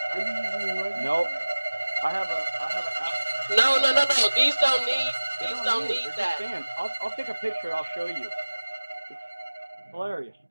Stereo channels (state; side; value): inverted; both; correlation -1.00